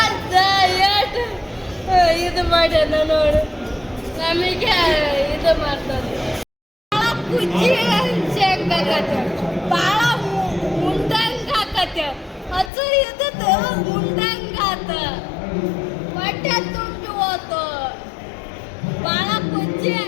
ಅಜ್ಜ ಏಟು ಇದು ಮಾಡ್ಯಾನ ನೋಡು ನಮಗೆ ಇದು ಮಾಡ್ತಾರೆ ಕುಜ್ಜಿ ಶೇಂಗಾಕತ್ತೆ ಭಾಳ ಮುಂದಂಗ ಹಾಕತ್ತೆ ಹಸು ಇದ್ದದ್ದು ಮುಂದಂಗ ಆತ ಹೊಟ್ಟೆ ತುಂಬಿ ಹೋತು ಭಾಳ ಕುಜ್ಜಿ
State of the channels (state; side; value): drops out; right; at 12.7 s